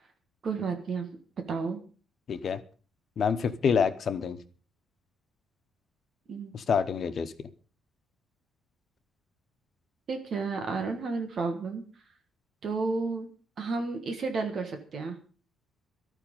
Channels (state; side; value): normal; both; correlation 0.75